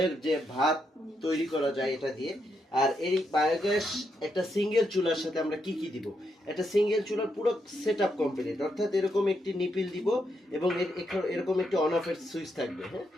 যে ভাত তৈরি করা যায় এটা দিয়ে। আর এই বায়োগ্যাস একটা সিঙ্গেল চুলার সাথে আমরা কি কি দিব, একটা সিঙ্গেল চুলার পুরো সেটআপ কমপ্লিট। অর্থাৎ এরকম একটি নিপিল দিব এবং এরকম একটি অন অফের সুইচ থাকবে। হ্যাঁ,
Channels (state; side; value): normal; both; correlation 0.80